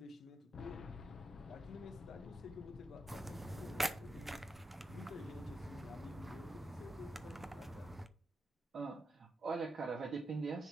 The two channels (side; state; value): both; normal; correlation 0.85